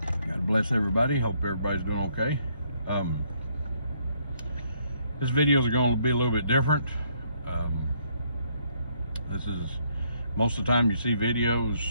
bless everybody. Hope everybody's doing okay. This video is going to be a little bit different. This is most of the time you see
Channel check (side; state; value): both; inverted; correlation -0.70